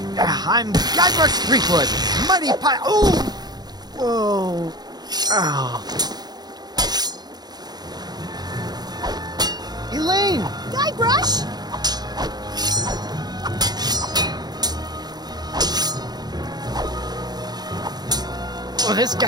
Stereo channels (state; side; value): late; left; 0.20 ms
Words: I'm Guybrush Threepwood, mighty pie. Oh! Whoa! Oh! Elaine! Guybrush! Oh, this